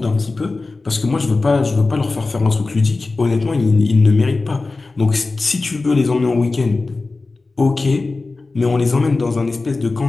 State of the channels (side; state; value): right; quieter; 3.6 dB